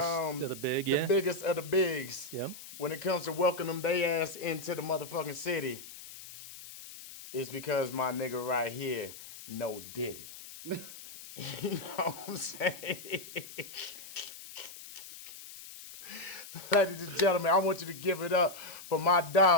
of the big, the yeah. biggest of the bigs. Yep. When it comes to welcoming they ass into the motherfucking city, it's because my nigga right here, no Diddy. You know what I'm saying? Ladies and gentlemen, I want you to give it up for my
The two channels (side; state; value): left; noise; hiss, 14 dB below the sound